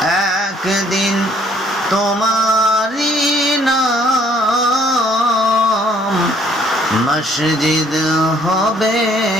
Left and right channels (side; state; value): both; normal; correlation 0.62